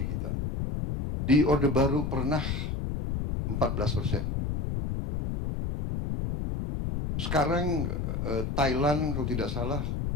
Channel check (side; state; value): left; noise; rumble, 2 dB below the sound